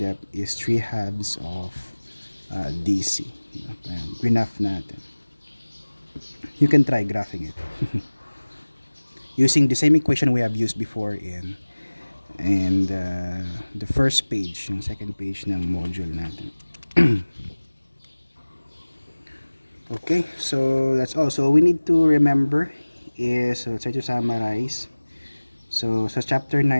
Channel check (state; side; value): inverted; both; correlation -1.00